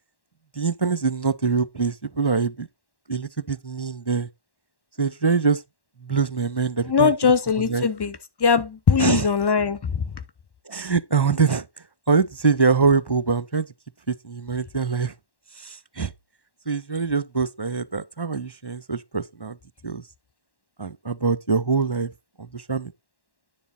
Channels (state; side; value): late; right; 1.1 ms